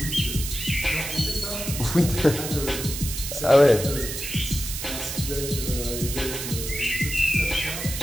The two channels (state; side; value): noise; right; hiss, 6 dB below the sound